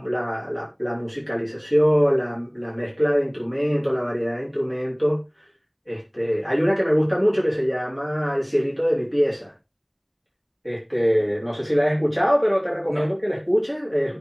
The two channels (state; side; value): identical; both; correlation 1.00